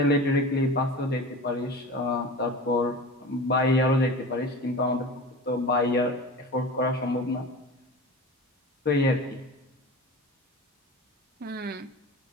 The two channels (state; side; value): normal; both; correlation 0.33